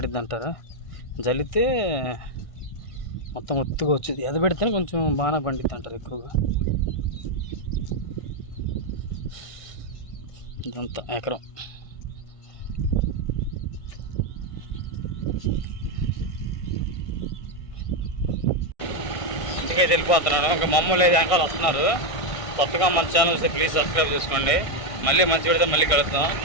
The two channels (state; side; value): late; right; 1.6 ms